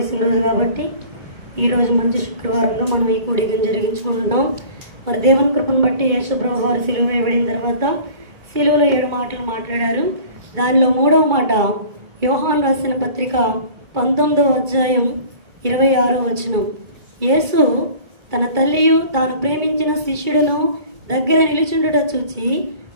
రోజు కాబట్టి ఈరోజు మంచి శుక్రవారంలో మనం ఈ కూడికను జరిగించుకుంటున్నాం. మరి దేవుని కృపను బట్టి యేసుప్రభు వారు సిలువ వేయబడిన తర్వాత సిలువలో 7 మాటలు మాట్లాడారు. దానిలో 3వ మాట యోహాను రాసిన పత్రిక 19వ అధ్యాయం 26వ వచనం. యేసు తన తల్లియు తాను ప్రేమించిన శిష్యుడును దగ్గర నిలుచుండుట చూచి,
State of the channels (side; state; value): left; late; 2.2 ms